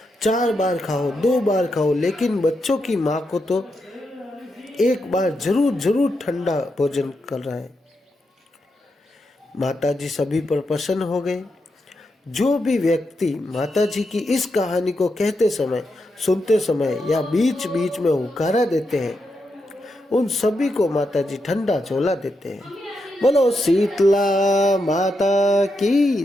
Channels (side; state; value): both; normal; correlation 0.84